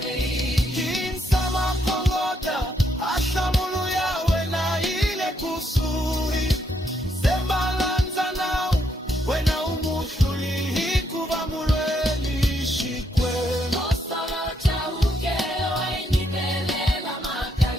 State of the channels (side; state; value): both; normal; correlation 0.75